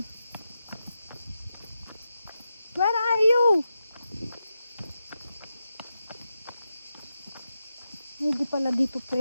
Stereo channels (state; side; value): inverted; both; correlation -0.88